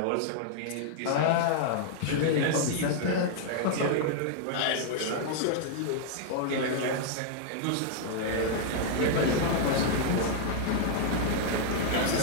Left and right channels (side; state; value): both; different; correlation -0.01